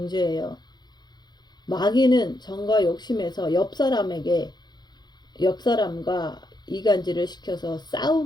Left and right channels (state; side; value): late; right; 0.21 ms